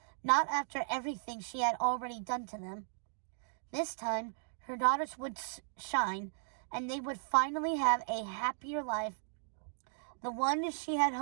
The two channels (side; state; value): left; silent; digital silence